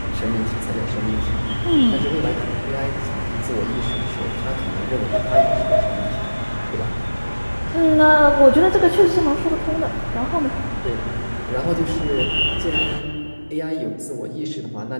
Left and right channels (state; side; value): inverted; both; correlation -1.00